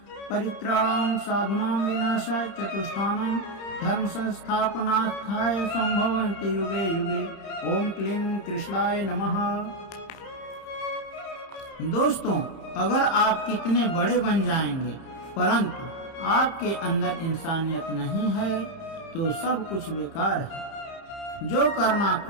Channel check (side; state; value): right; late; 31 ms